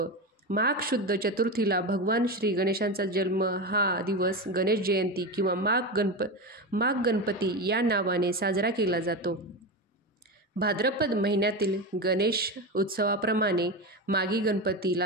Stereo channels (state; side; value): normal; both; correlation 0.19